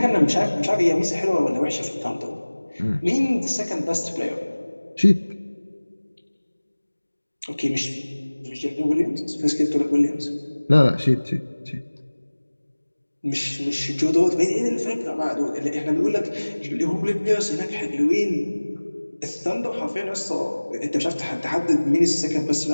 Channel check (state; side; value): inverted; both; correlation -1.00